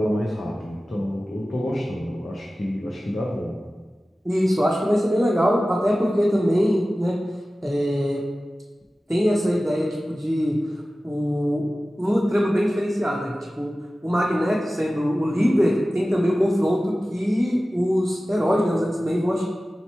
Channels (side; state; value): both; normal; correlation 0.96